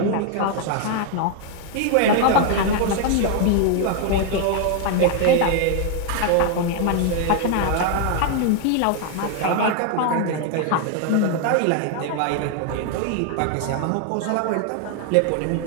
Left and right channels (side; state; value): both; different; correlation 0.00